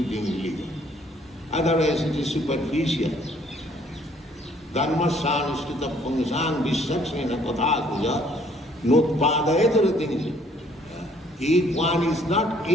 religion. Otherwise it is superficial. Dharmasyanushrita Pungsang Vishaksena Kathakuja Nutpadayataratinja. If one is not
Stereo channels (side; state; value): both; normal; correlation 0.62